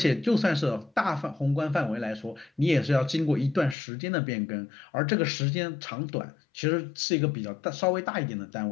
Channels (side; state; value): right; drops out; at 3.8 s